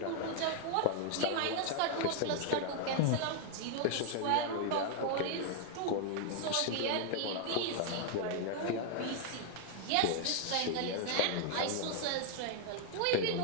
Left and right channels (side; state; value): both; different; correlation 0.00